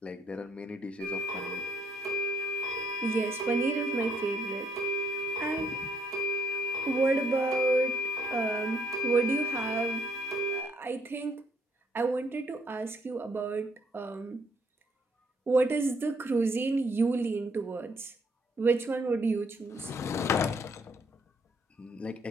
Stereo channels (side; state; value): both; normal; correlation 0.69